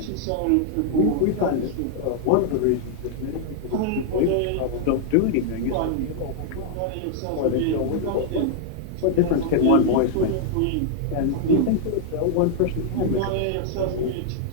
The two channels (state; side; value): different; both; correlation -0.01